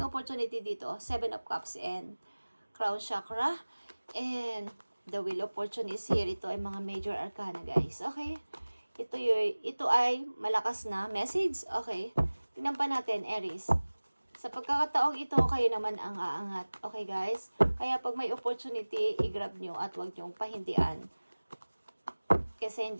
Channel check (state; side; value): inverted; both; correlation -1.00